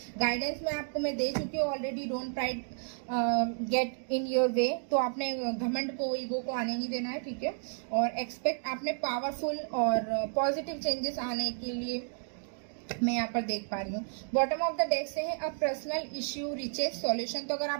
गाइडेंस मैं दे चुकी हूँ already. Don't pride get in your way, तो आपने घमंड को, ईगो को आने नहीं देना है, ठीक है। और एक्सपेक्ट, आपने पावरफुल और पॉजिटिव चेंजेस आने के लिए मैं यहाँ पर देख पा रही हूँ। बॉटम ऑफ द डेक से है a personal issue riches solution. तो अगर आप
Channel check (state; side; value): silent; left; digital silence